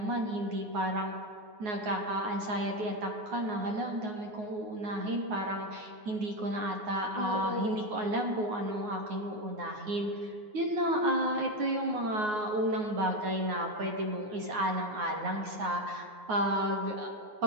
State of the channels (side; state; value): left; late; 9.5 ms